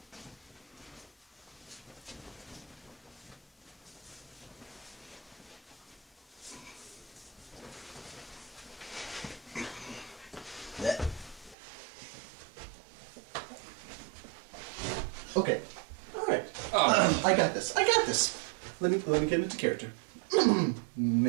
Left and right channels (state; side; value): drops out; left; at 11.6 s